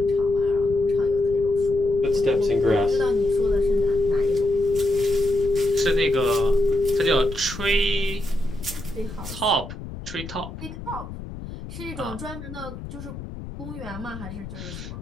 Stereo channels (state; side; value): noise; left; rumble, 11 dB below the sound